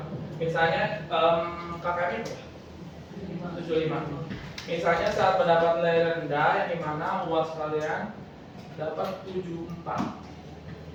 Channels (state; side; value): identical; both; correlation 1.00